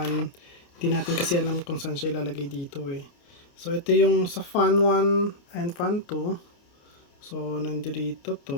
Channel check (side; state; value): right; late; 29 ms